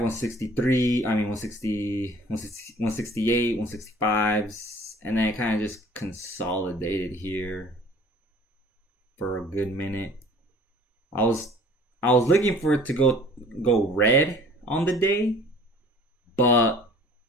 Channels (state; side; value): normal; both; correlation 0.50